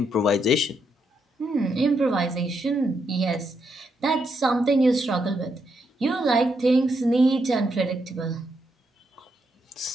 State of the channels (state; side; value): normal; both; correlation 0.79